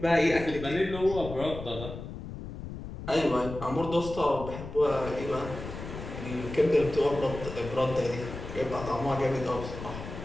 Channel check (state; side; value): noise; left; rumble, 10 dB below the sound